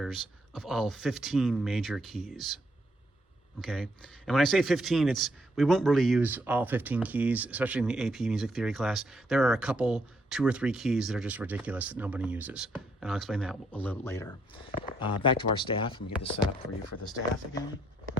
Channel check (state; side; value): normal; both; correlation 0.73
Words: of all 15 major keys. Okay, and when I say 15, we won't really use all 15 keys, especially in the AP Music Theory class. There are a couple, 2 or 3 keys that are just ridiculous that nobody uses, and I'll explain that a little later. Back to our staff. Let me get this set up for you for the staff again.